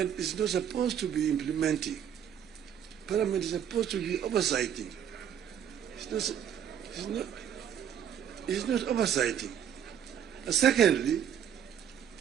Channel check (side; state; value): left; quieter; 9.1 dB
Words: is not supposed to be implementing. Parliament is supposed to be oversighting. It's not oversighting. And secondly,